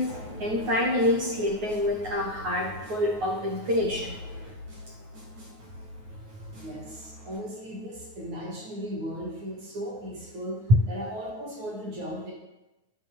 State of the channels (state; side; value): late; left; 9.4 ms